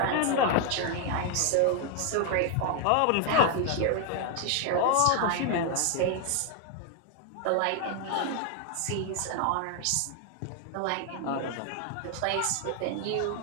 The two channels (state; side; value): different; both; correlation 0.00